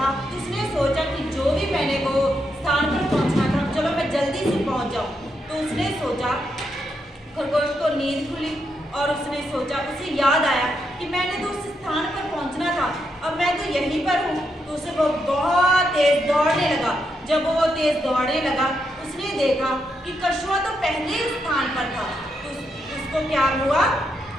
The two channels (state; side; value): normal; both; correlation 0.81